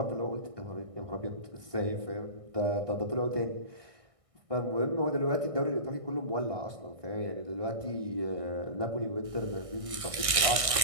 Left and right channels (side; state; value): left; late; 1.6 ms